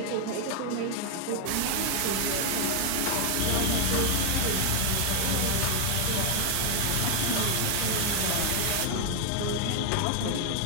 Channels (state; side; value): different; both; correlation 0.00